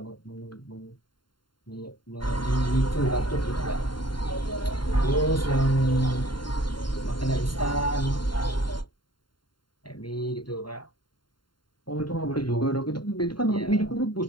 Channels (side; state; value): right; late; 0.72 ms